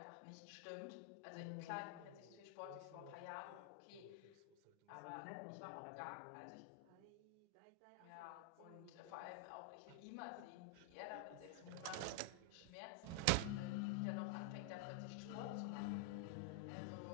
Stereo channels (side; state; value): both; different; correlation 0.00